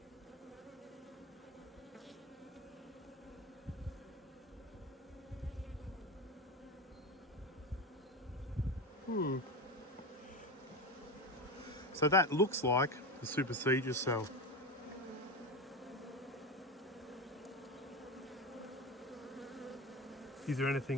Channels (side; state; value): both; normal; correlation 0.21